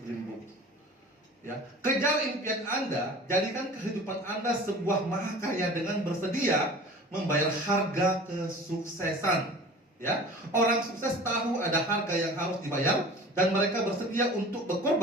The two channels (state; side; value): normal; both; correlation 0.41